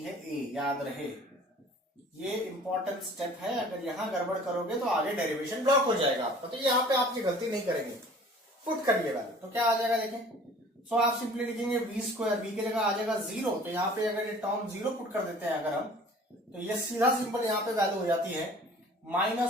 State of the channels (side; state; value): both; normal; correlation 0.48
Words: है a। याद रहे ये इंपॉर्टेंट स्टेप है, अगर यहां गड़बड़ करोगे तो आगे डेरिवेशन ब्लॉक हो जाएगा आपका। तो यहां पे आप ये गलती नहीं करेंगे, पुट करिए वैल्यू, तो क्या आ जाएगा देखें। सो आप सिंपली लिखेंगे वी स्क्वायर, वी की जगह आ जाएगा 0, तो यहाँ पे अगर ये टर्म 0 पुट कर देते हैं अगर हम, तो ये सीधा सिंपल यहाँ पे वैल्यू हो जाती है